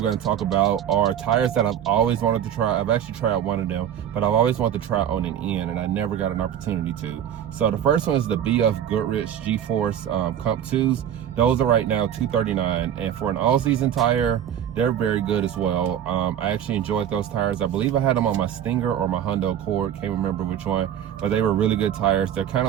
to talk about are tires that I've always wanted to try. I've actually tried one of them, but I've always wanted to try on an N, and I never got an opportunity to. So the first one is the BF Goodrich G-Force Comp 2s. Those are right now $239, and for an all-season tire, they're very good as well. I actually enjoyed those tires. I believe I had them on my Stinger or my Hyundai Accord, can't remember which one, but they were really good tires. They're kind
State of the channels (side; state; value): left; quieter; 9.8 dB